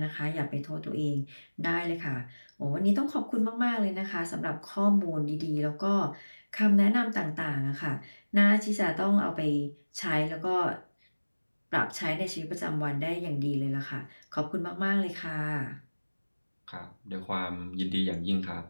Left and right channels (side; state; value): both; inverted; correlation -1.00